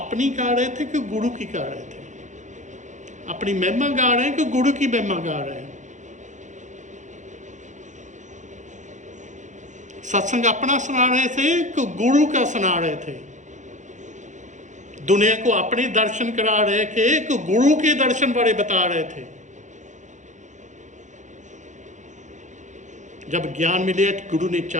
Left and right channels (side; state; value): left; late; 0.35 ms